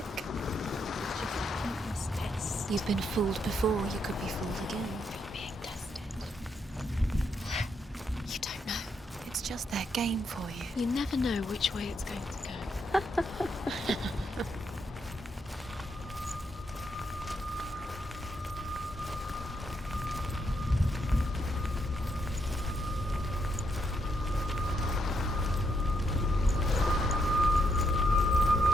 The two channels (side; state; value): both; normal; correlation 0.78